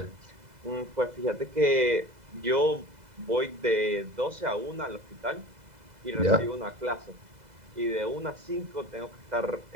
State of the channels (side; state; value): left; late; 2.0 ms